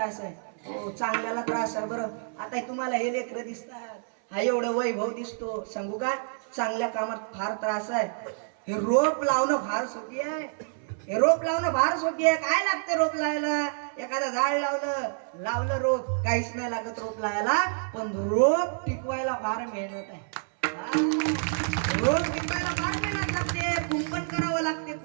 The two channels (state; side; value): silent; left; 59 dB below the other